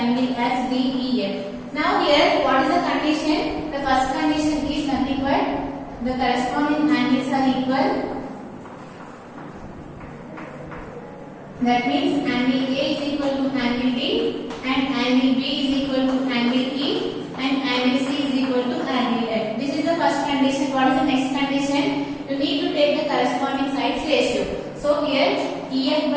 as D, E, F. Now here, what is the condition? The first condition is nothing but the corresponding angles are equal. That means angle A is equal to angle D and angle B is equal to angle E and angle C is equal to angle F. This is the first condition. What is the next condition? You need to take the corresponding sides ratio. So here EF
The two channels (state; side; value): identical; both; correlation 1.00